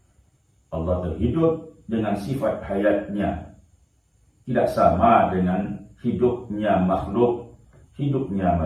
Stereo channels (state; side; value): identical; both; correlation 1.00